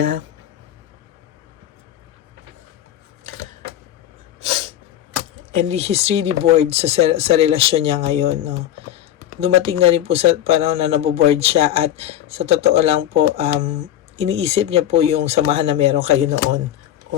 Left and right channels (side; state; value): right; quieter; 11.8 dB